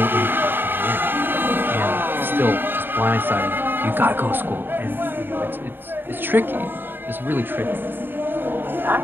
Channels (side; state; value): left; late; 0.097 ms